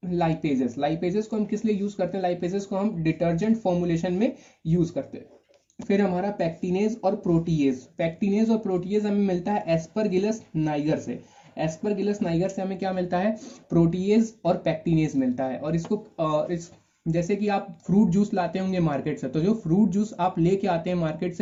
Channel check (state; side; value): identical; both; correlation 1.00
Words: लाइपेजेस। लाइपेजेस को हम किस लिए यूज करते हैं, लाइपेजेस को हम डिटर्जेंट फॉर्मुलेशन में यूज करते हैं। फिर हमारा पैक्टिनेज और प्रोटीएज, पैक्टिनेज और प्रोटीएज हमें मिलता है एस्परगिलस नाइगर से। एस्परगिलस नाइगर से हमें क्या मिलता है, प्रोटीएज और पैक्टिनेज मिलता है। और इसको जैसे कि आप फ्रूट जूस लाते होंगे मार्केट से, तो जो फ्रूट जूस आप लेके आते हैं मार्केट